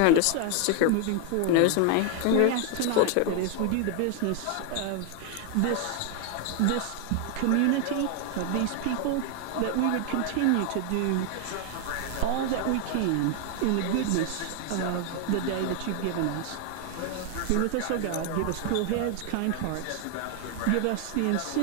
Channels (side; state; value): both; different; correlation 0.00